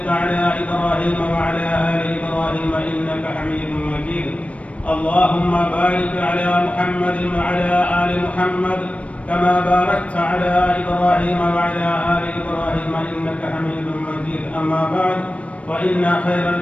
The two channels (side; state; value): right; late; 0.064 ms